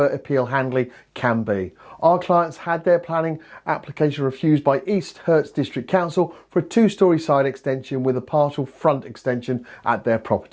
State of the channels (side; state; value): both; identical; correlation 1.00